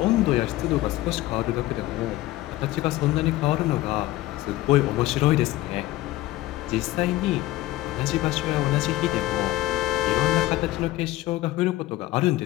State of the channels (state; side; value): quieter; right; 16.8 dB